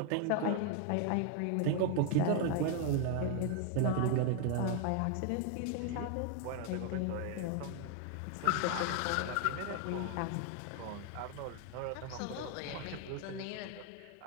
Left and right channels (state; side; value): different; both; correlation 0.01